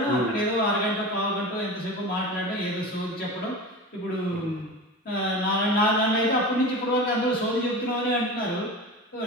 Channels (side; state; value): both; normal; correlation 0.31